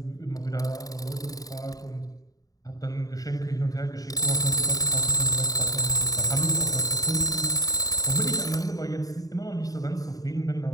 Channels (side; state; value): right; late; 0.18 ms